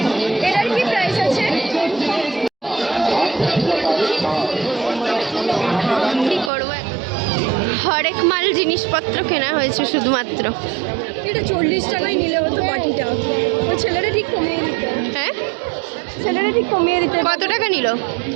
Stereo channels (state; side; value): drops out; left; at 6.5 s